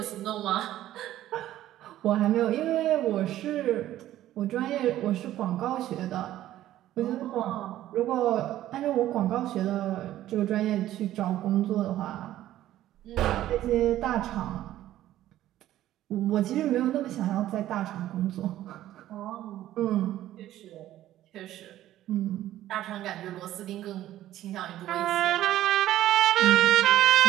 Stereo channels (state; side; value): quieter; left; 13.5 dB